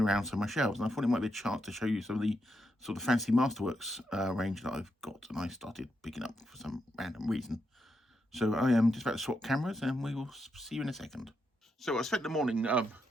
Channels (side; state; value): both; normal; correlation 0.82